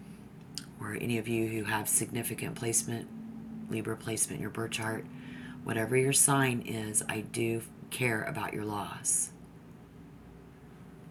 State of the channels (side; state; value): both; identical; correlation 1.00